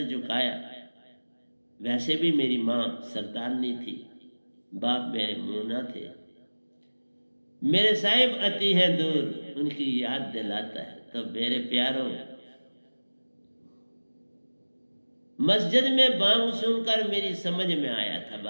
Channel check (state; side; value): inverted; both; correlation -1.00